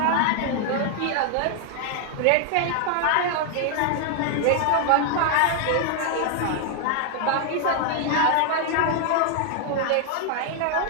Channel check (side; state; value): both; different; correlation 0.00